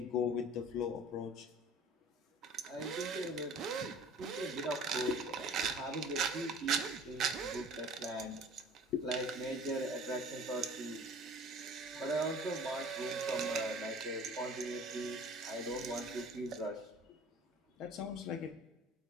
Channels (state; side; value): normal; both; correlation 0.46